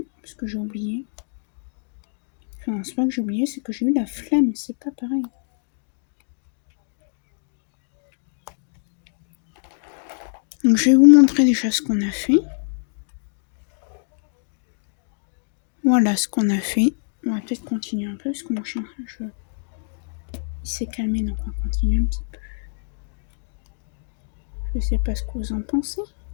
parce que j'ai oublié. Enfin, c'est pas que j'ai oublié, c'est que j'ai eu la flemme, c'est pas pareil. Donc je vais vous montrer déjà ce qu'on a fait. Voilà ce qu'on a fait. On va peut-être continuer un peu, parce que mon chien, il s'est calmé, donc on va continuer un petit peu. Je sais pas ce que vous en pensez.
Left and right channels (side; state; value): right; silent; digital silence